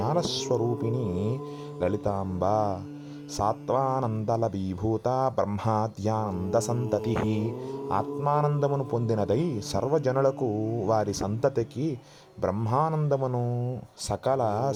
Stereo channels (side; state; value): both; identical; correlation 1.00